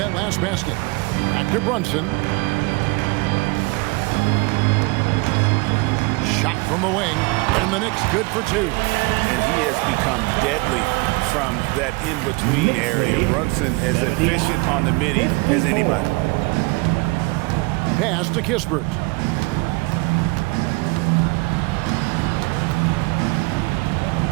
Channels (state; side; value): quieter; left; 26.0 dB